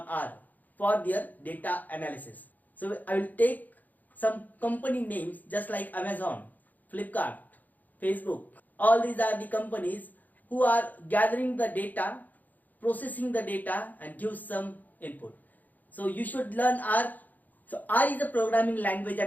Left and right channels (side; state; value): right; late; 0.082 ms